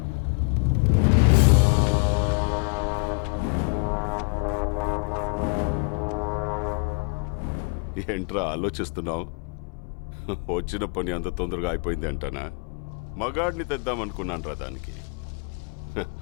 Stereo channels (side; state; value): right; quieter; 35.3 dB